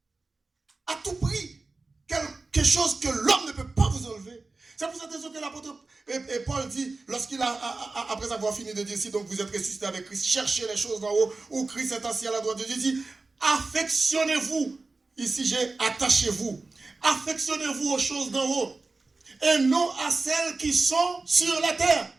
À tout prix. Quelque chose que l'homme ne peut pas vous enlever. C'est pour cette raison que l'apôtre Paul dit, lorsqu'il après avoir fini de dire, si donc vous êtes ressuscité avec Christ, cherchez les choses d'en haut, où Christ est assis à la droite de Dieu, il dit, affectionnez-vous. Ici, j'ai attachez-vous. Affectionnez-vous aux choses d'en haut, et non à celles qui sont sur la terre.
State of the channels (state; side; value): quieter; left; 3.6 dB